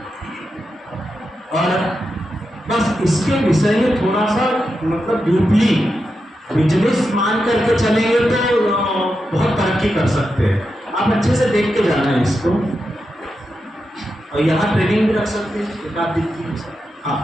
और बस इसके विषय में थोड़ा सा मतलब डीपली बिजनेस मान करके चलेंगे तो बहुत तरक्की कर सकते हैं। आप अच्छे से देख के जाना है इसको, और यहाँ ट्रेनिंग भी रख सकते हैं एक आध दिन की।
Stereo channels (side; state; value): both; normal; correlation 0.88